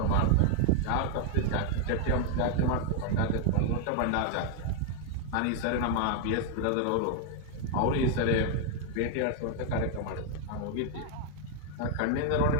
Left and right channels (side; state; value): both; different; correlation 0.00